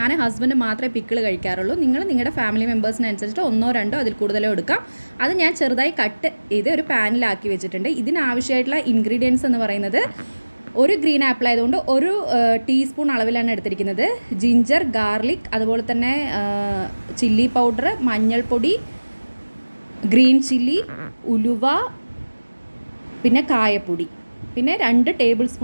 ഹസ്ബൻഡ് മാത്രമേ പിക്കിൾ കഴിക്കാറുള്ളൂ. നിങ്ങളുടെ ഫാമിലി മെമ്പേഴ്സിനനുസരിച്ചിട്ട് ഒന്നോ രണ്ടോ അതിൽ കൂടുതലോ എടുക്കാം. അത് ഞാൻ ചെറുതായി കട്ട് ചെയ്ത് ഒരു പാനിലാക്കി വെച്ചിട്ടുണ്ട്. ഇതിനാവശ്യമായിട്ടുള്ള ഇൻഗ്രീഡിയൻസ് എന്ന് പറയുന്നത്, ഒരു ഗ്രീൻ ആപ്പിൾ ആയതുകൊണ്ട് ഒരു ടീസ്പൂൺ അളവിലാണ് എടുത്തിരിക്കുന്നത്. ജിഞ്ചർ, ഗാർലിക്, അതുപോലെ തന്നെ ചില്ലി പൗഡർ, മഞ്ഞൾപ്പൊടി, ഗ്രീൻ ചില്ലി, ഉലുവ, പിന്നെ കായപ്പൊടി, പിന്നെ 2 ടേബിൾ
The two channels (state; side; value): inverted; both; correlation -1.00